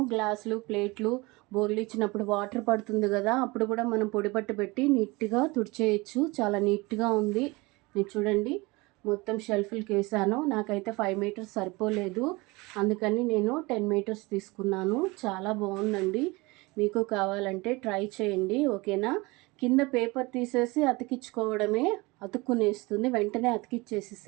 గ్లాసులు, ప్లేట్లు, బోర్లు ఇచ్చినప్పుడు వాటర్ పడుతుంది కదా, అప్పుడు కూడా మనం పొడి పట్టు పెట్టి నీట్గా తుడిచేయచ్చు. చాలా నీట్గా ఉంది. నేను చూడండి, మొత్తం షెల్ఫ్లకి వేసాను. నాకైతే 5 మీటర్స్ సరిపోలేదు, అందుకని నేను 10 మీటర్స్ తీసుకున్నాను. చాలా బాగుందండి. మీకు కావాలంటే ట్రై చేయండి, ఓకేనా? కింద పేపర్ తీసేసి అతికించుకోవడమే, అతుక్కునేస్తుంది. వెంటనే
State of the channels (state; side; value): quieter; left; 23.9 dB